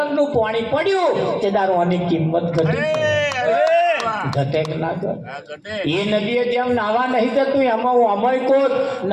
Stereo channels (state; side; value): identical; both; correlation 1.00